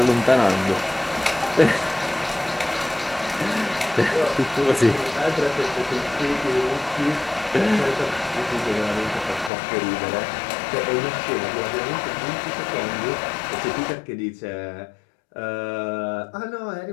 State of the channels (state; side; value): drops out; right; at 9.5 s